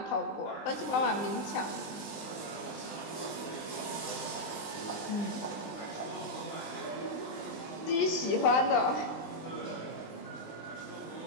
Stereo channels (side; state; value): right; late; 20 ms